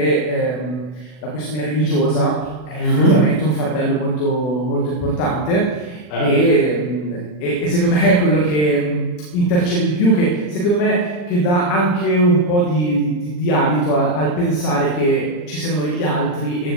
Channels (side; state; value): right; late; 40 ms